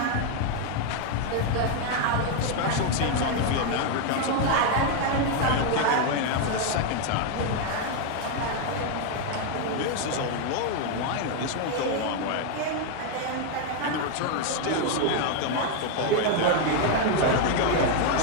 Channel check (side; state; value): both; different; correlation 0.01